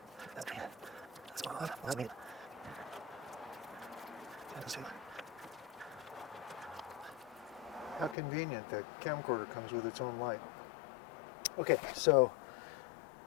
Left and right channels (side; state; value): right; drops out; at 8.2 s